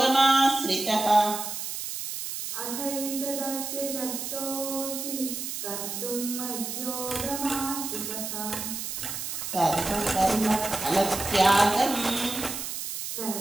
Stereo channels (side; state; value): right; noise; hiss, 5 dB below the sound